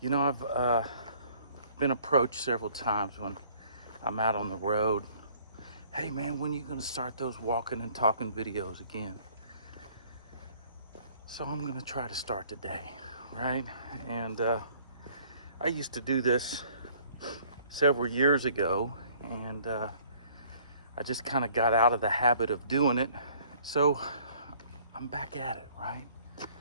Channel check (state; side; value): inverted; both; correlation -0.58